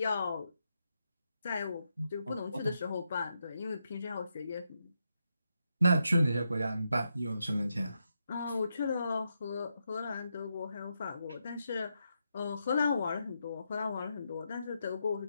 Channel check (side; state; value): both; inverted; correlation -0.83